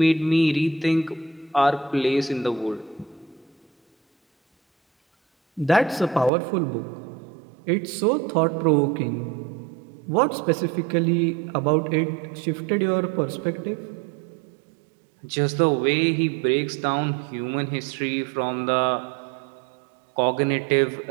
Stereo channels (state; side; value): drops out; left; at 6.3 s